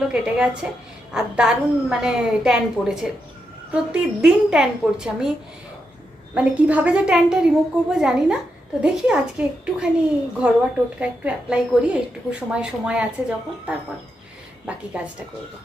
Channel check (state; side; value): normal; both; correlation 0.84